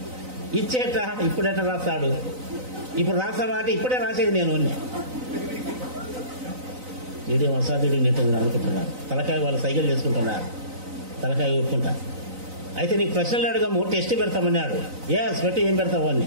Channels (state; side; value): late; left; 3.9 ms